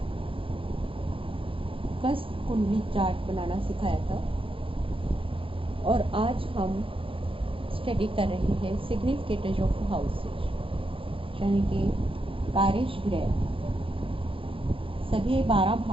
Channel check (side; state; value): left; late; 0.26 ms